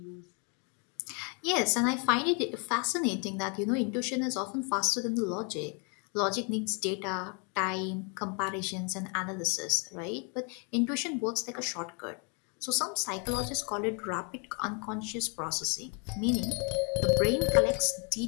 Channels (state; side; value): quieter; right; 36.0 dB